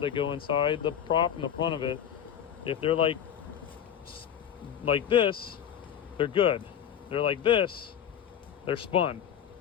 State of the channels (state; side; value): quieter; right; 9.2 dB